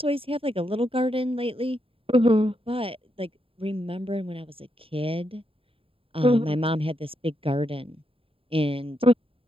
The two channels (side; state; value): left; late; 0.27 ms